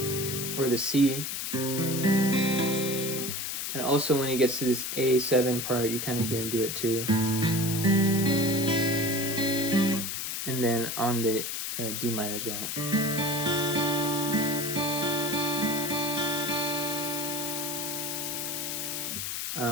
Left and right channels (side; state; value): left; noise; hiss, 3 dB below the sound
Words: or the C. And also when he gets to this A7 part, you kind of hear him do it too. And then on the D minor as well.